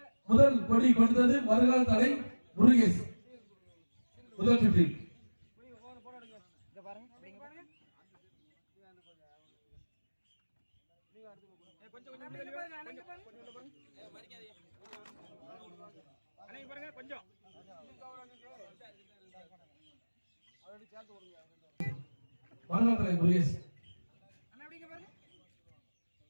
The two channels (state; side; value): inverted; both; correlation -1.00